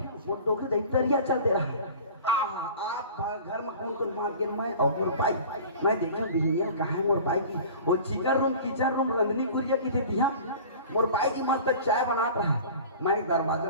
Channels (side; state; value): both; inverted; correlation -0.41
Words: डोके दैतरिया चलते रहा आप घर में कौन मार के मैं और मोर पाई मैं देखा बिहनिया कहाँ है मोर पाई की वो चिकन रूम किचन रूम रंधनी गुड़िया की थी मोर पाई की मस्त चाय बना रहा। मैं